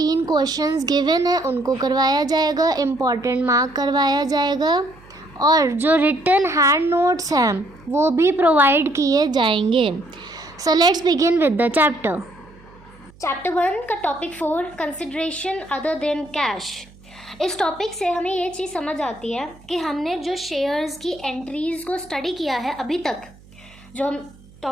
क्वेश्चंस गिवन है उनको करवाया जाएगा, इम्पॉर्टेंट मार्क करवाया जाएगा और जो रिटन हैंड नोट्स हैं वो भी प्रोवाइड किए जाएंगे। So let's begin with the chapter 1 का topic 4 consideration other than cash. इस टॉपिक से हमें ये चीज़ समझ आती है कि हमने जो शेयर्स की एंट्रीज़ को स्टडी किया है अभी तक, जो हम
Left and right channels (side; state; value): right; noise; hum, 25 dB below the sound